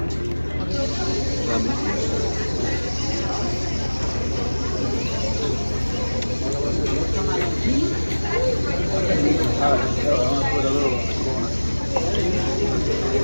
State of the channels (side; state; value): both; inverted; correlation -1.00